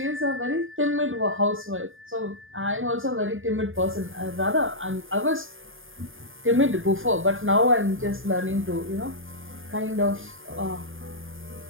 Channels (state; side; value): late; left; 0.59 ms